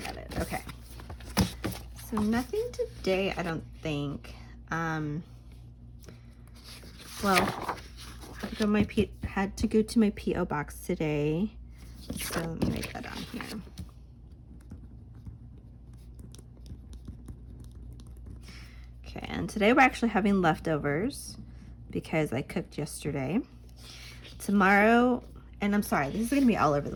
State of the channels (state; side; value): identical; both; correlation 1.00